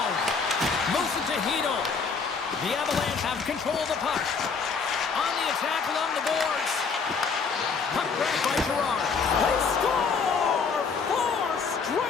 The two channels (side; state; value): right; quieter; 5.3 dB